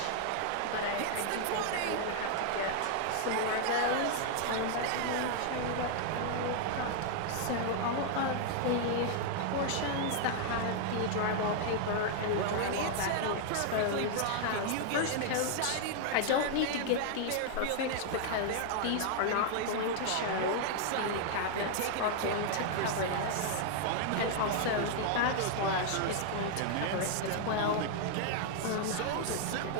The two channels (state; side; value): different; both; correlation 0.00